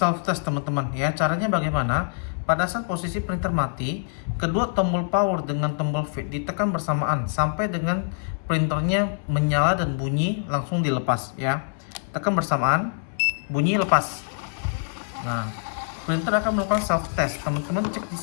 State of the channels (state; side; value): silent; right; 62 dB below the other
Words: test, teman-teman ya. Caranya bagaimana? Pada saat posisi printer mati, kedua tombol power dengan tombol V ditekan bersamaan sampai dengan printernya menyala dan bunyi langsung dilepas ya. Tekan bersamaan, bunyi, lepas. Nah, printer akan melakukan self test. Teman-teman cek di